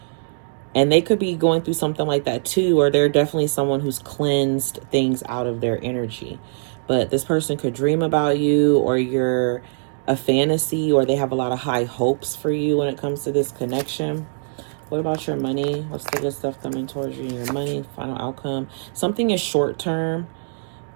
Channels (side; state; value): left; silent; digital silence